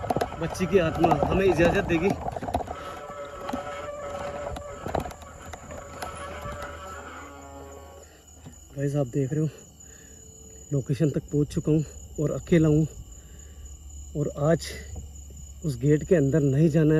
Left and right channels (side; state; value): both; identical; correlation 1.00